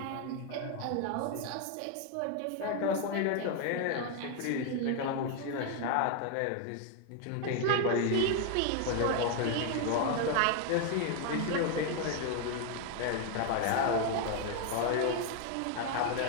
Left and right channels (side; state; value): both; different; correlation 0.01